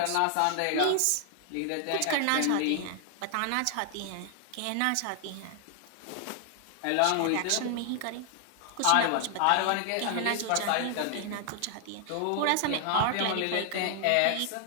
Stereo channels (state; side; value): different; both; correlation 0.00